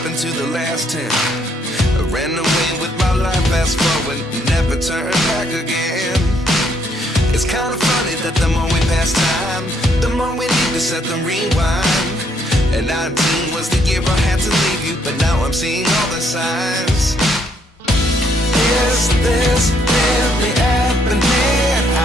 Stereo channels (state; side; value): normal; both; correlation 0.71